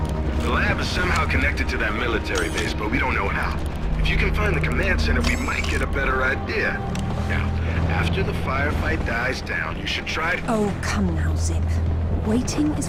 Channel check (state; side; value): identical; both; correlation 1.00